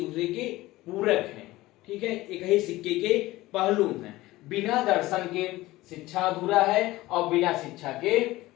दूसरे के पूरक हैं। ठीक है, एक ही सिक्के के पहलू हैं। बिना दर्शन के शिक्षा अधूरा है और बिना शिक्षा के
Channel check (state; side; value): quieter; right; 18.2 dB